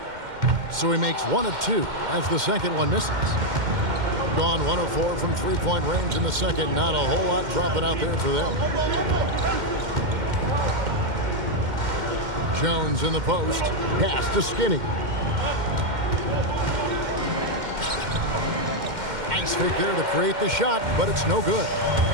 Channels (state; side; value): late; left; 2.1 ms